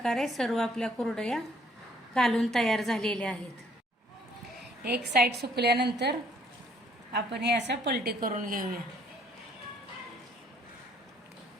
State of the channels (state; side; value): normal; both; correlation 0.63